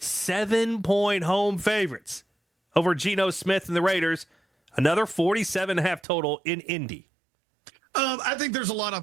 home favorites over Geno Smith and the Raiders. Another 47.5 total in Indy. I think there's a lot of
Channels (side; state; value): left; drops out; at 6.0 s